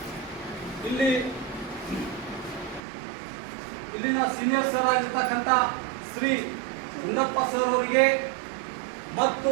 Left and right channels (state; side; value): drops out; left; at 2.8 s